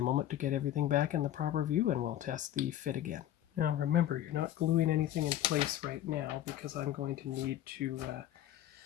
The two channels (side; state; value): right; quieter; 12.3 dB